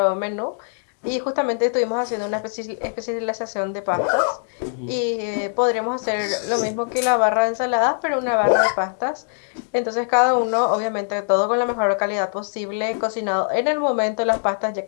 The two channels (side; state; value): right; silent; digital silence